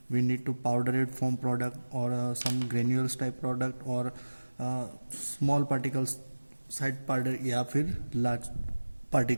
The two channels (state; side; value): inverted; both; correlation -1.00